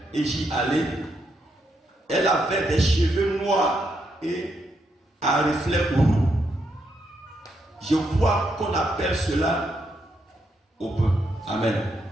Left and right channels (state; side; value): normal; both; correlation 0.79